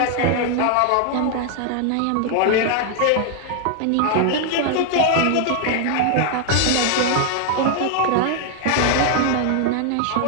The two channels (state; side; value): different; both; correlation 0.00